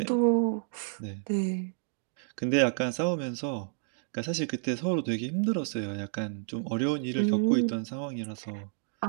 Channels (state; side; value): silent; left; digital silence